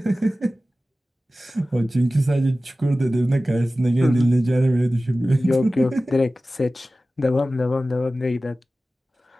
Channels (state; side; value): normal; both; correlation 0.96